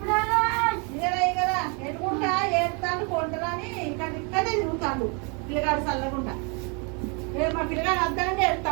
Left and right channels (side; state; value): left; quieter; 33.8 dB